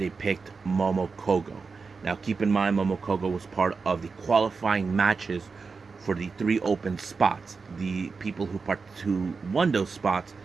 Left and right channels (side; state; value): left; quieter; 4.8 dB